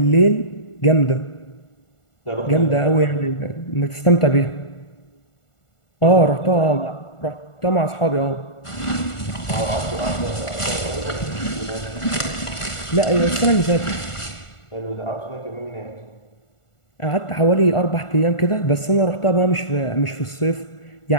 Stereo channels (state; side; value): late; right; 1.4 ms